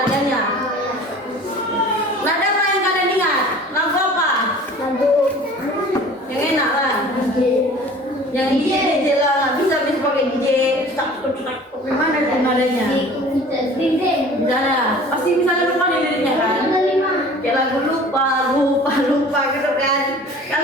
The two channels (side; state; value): both; normal; correlation 0.45